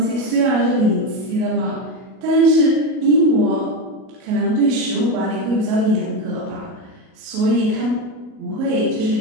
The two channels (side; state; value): left; late; 37 ms